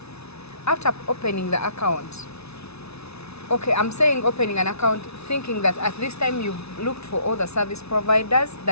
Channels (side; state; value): right; late; 0.80 ms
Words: After opening the account, okay, I'm saying opening an account thinking that at this time you've looked for all the service providers,